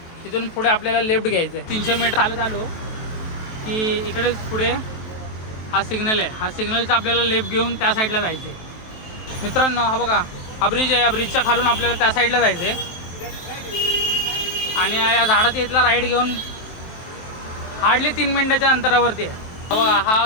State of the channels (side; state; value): right; late; 23 ms